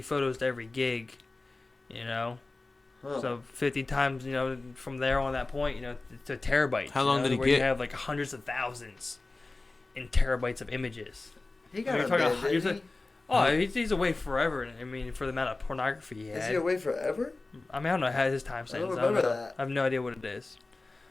photos to every gig. You know. Huh. So 50 times, from there on that point, to terabytes. How long did he where get? You have like hundreds of thousands in terabytes of images. He got You're a talking bid, about- didn't you're he? He's away forever. I mean, for the amount of pornography he Is had. he away forever? I mean, I don't know how his time I don't sentence. remember know. that. I have no idea what it is.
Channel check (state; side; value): quieter; right; 3.3 dB